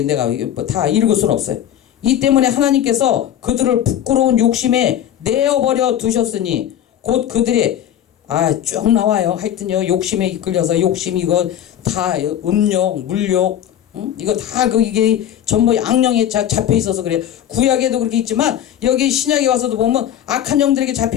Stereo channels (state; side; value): quieter; right; 10.7 dB